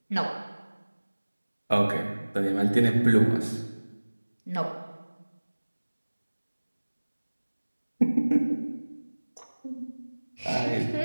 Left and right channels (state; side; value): inverted; both; correlation -1.00